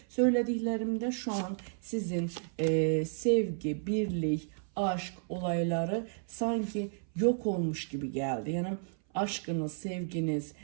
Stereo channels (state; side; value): silent; left; 56 dB below the other